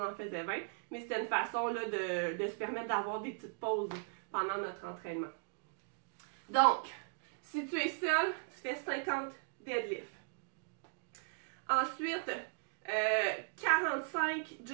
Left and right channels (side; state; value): left; silent; digital silence